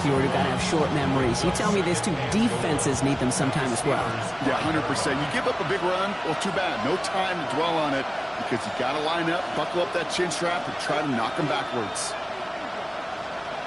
Huard, who got to have short memories. You tell me this too, defenses need them sometime as well. Yeah, 100%. You give up a big run, well, too bad. No time to dwell on it because you got to line up, buckle up that chin strap, and try to knock them backwards.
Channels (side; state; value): both; identical; correlation 1.00